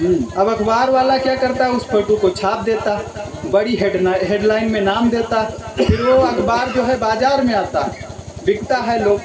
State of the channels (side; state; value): both; identical; correlation 1.00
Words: अब अखबार वाला क्या करता, उस फोटो को छाप देता, बड़ी हेडलाइन में नाम देता। फिर वो अखबार जो है बाजार में आता, बिकता है,